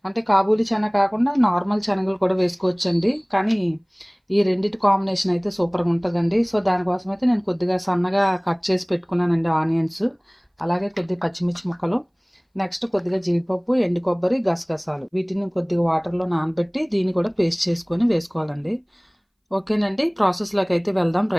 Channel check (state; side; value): identical; both; correlation 1.00